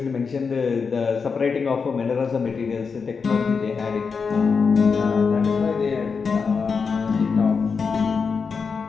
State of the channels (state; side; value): quieter; right; 5.4 dB